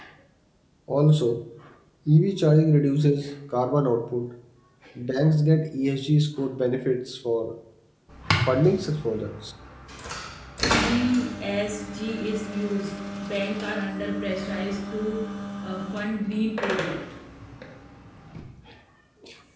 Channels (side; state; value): both; identical; correlation 1.00